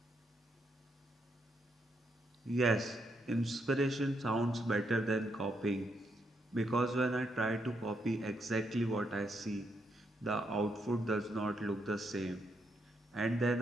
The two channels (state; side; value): normal; both; correlation 0.78